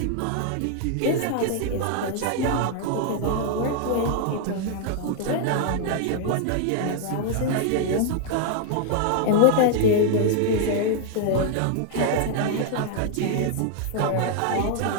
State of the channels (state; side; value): different; both; correlation 0.00